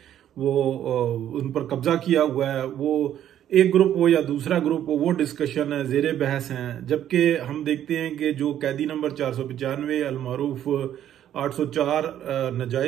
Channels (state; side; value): quieter; left; 11.0 dB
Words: वो उन पर कब्जा किया हुआ है। वो एक ग्रुप हो या दूसरा ग्रुप हो, वो डिस्कशन है, जेर बहस हैं। जबकि हम देखते हैं कि जो कैदी नंबर 495 अलमारूफ 804